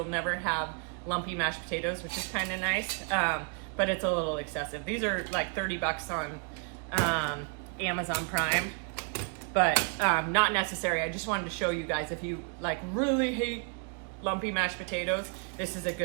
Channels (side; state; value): left; quieter; 39.0 dB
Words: never have lumpy mashed potatoes, which is kind of nice, but it's a little excessive. These are like $30 on Amazon Prime, but not necessary. I just wanted to show you guys, if you like really hate lumpy mashed potatoes, this is a